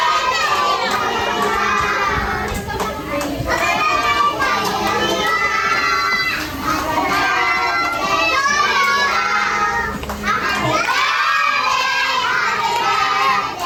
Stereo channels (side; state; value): both; identical; correlation 1.00